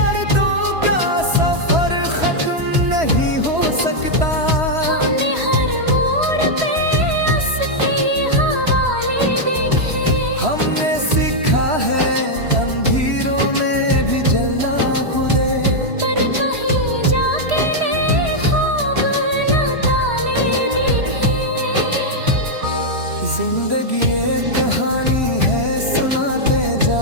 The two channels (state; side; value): late; left; 3.0 ms